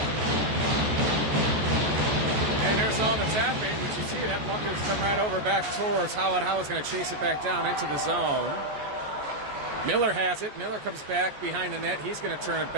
All that's happening, but you see that puck has come right over back towards Howard. Howard's going to chase it back down into the zone. Miller has it. Miller comes back behind the net. He's going to turn it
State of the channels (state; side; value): late; left; 14 ms